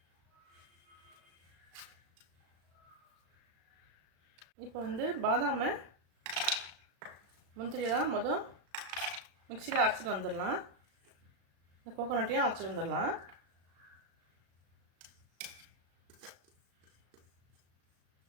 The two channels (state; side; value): late; left; 35 ms